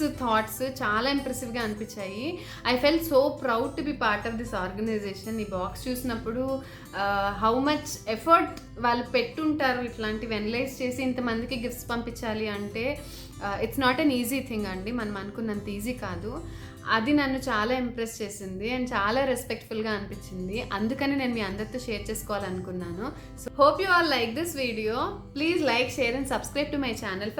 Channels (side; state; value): both; identical; correlation 1.00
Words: థాట్స్ చాలా ఇంప్రెసివ్గా అనిపించాయి. I felt so proud to be part of this organisation. ఈ బాక్స్ చూసినప్పుడు హౌ మచ్ ఎఫర్ట్ వాళ్ళు పెట్టుంటారు ఇట్లాంటివి అనలైజ్ చేసి ఇంతమందికి గిఫ్ట్స్ పంపించాలి అంటే. It's not an easy thing అండి, మనం అనుకున్నంత ఈజీ కాదు. అది నన్ను చాలా ఇంప్రెస్ చేసింది అండ్ చాలా రెస్పెక్ట్ఫుల్గా అనిపించింది. అందుకని నేను మీ అందరితో షేర్ చేసుకోవాలనుకున్నాను. So hope you all like this video. Please like, share and subscribe to my channel